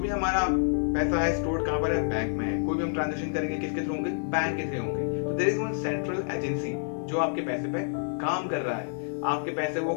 हमारा पैसा है स्टोर्ड कहां पर है? बैंक में है। कोई भी हम ट्रांजैक्शन करेंगे किसके थ्रू होंगे? बैंक के थ्रू होंगे। तो there is one central agency जो आपके पैसे पे काम कर रहा है। आपके पैसे वो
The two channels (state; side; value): silent; right; digital silence